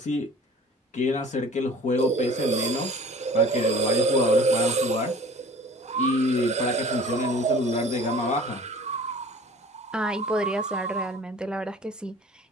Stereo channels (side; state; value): both; normal; correlation 0.45